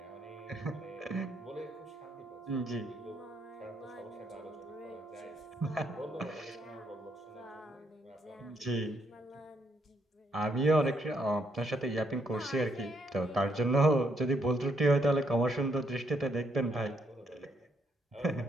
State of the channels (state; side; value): normal; both; correlation 0.74